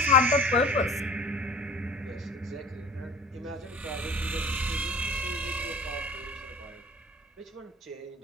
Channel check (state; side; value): normal; both; correlation 0.41